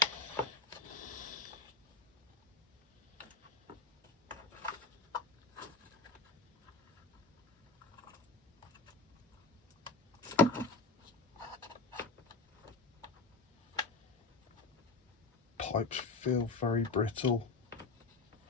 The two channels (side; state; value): right; quieter; 3.8 dB